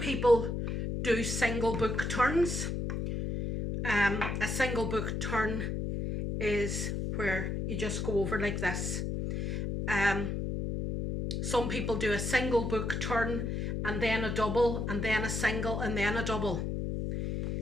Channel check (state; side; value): noise; left; hum, 2 dB below the sound